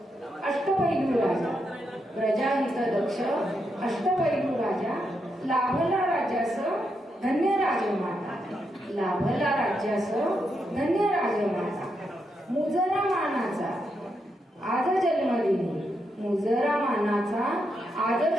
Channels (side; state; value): both; normal; correlation 0.82